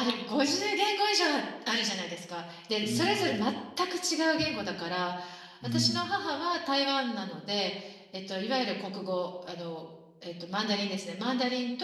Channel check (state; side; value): identical; both; correlation 1.00